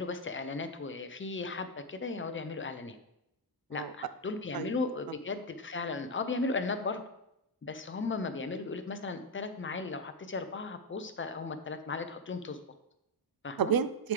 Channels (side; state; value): both; normal; correlation 0.03